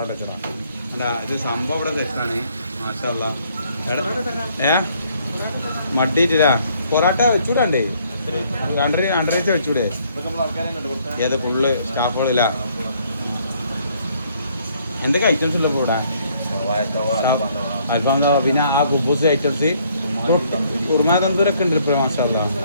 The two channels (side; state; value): both; inverted; correlation -0.65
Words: വെച്ചടാ എന്താ ഇത് സംഭവം ഇവിടെ തെറ്റാണ് മാഷല്ല മടിയിട്ടില്ല പൊറാട്ട വെച്ചൂടണ്ടേ രണ്ടരച്ച് വെച്ചൂടെ ഏത് ഫുള്ള് സ്റ്റാഫുകളില്ല എന്തൊക്കെ ഐറ്റംസ് ഉള്ളപ്പോൾ ഇവിടെ അൽഫാം പിന്നെ ആ കുബൂസ് ഐറ്റംസ് കുറുമാ തന്തൂരൊക്കെ ഉണ്ട് ഇപ്പോൾ മാഷല്ല